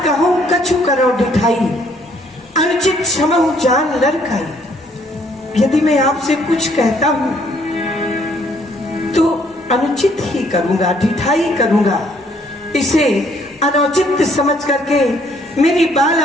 कहूं कछु करो ढिठाई, अनुचित क्षमहु जान लड़काई। यदि मैं आपसे कुछ कहता हूं तो अनुचित ही करूंगा, ढिठाई करूंगा। इसे अनुचित समझ करके मेरी बाल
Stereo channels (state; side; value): normal; both; correlation 0.65